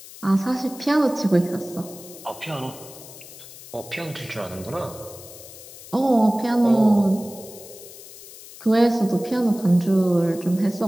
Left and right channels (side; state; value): left; noise; hiss, 17 dB below the sound